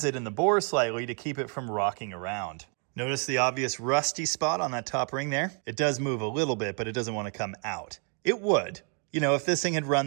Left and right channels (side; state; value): left; quieter; 39.2 dB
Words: it in the bore slightly to keep it from rocking around. Notice the obvious rusty spot on that top ring there? It does move a little bit, but it doesn't want to come out. It would. You know, if this thing had